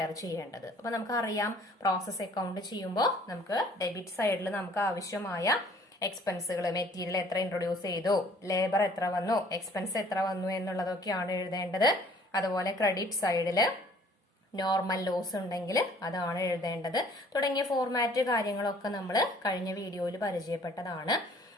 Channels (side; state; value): both; normal; correlation 0.56